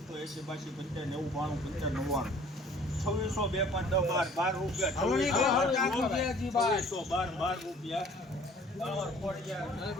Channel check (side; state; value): both; normal; correlation 0.53